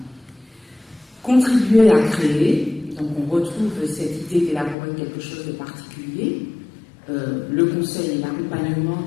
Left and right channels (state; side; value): drops out; right; at 4.8 s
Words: Contribuer à créer, donc on retrouve cette idée d'élaborer quelque chose de particulier. Le conseil et l'accompagnement